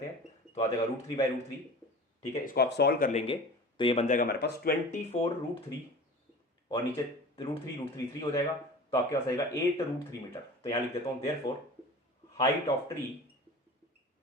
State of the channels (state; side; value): normal; both; correlation 0.37